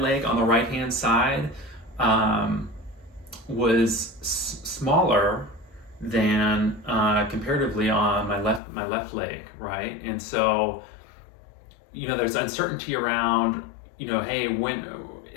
on the right-hand side was smaller than comparatively on my left leg, right? And so, there's uncertainty around, hey, when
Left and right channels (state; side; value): drops out; right; at 8.6 s